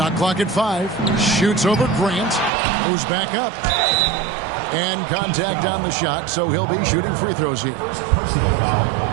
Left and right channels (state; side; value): drops out; left; at 2.5 s